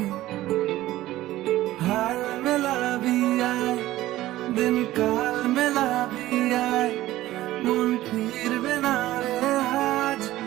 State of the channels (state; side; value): quieter; left; 15.6 dB